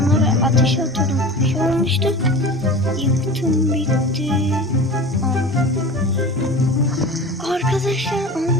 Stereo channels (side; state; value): both; normal; correlation 0.35